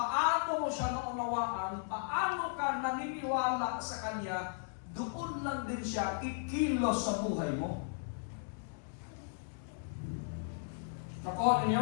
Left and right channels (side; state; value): right; silent; digital silence